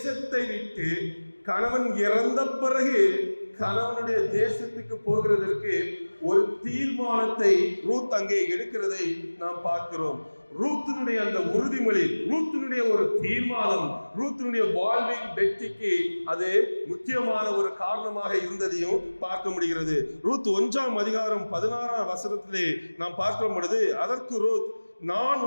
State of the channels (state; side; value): inverted; both; correlation -1.00